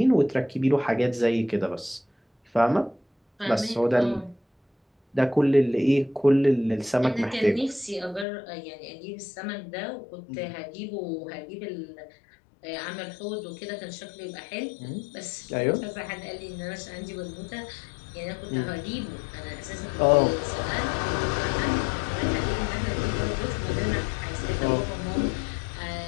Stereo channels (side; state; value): right; drops out; at 8.2 s